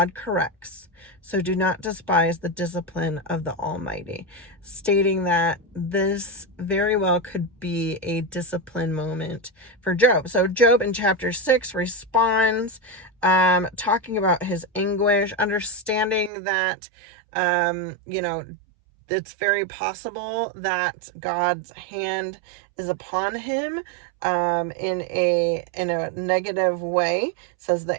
corrects, so do not despise the discipline of the Almighty, stating that this very well could be a discipline moment for Job. So Job in chapter 6 responds, talking about his anguish, understanding that, it's very possible that God's hand is upon him in a negative way. Says,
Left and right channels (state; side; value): drops out; left; at 16.3 s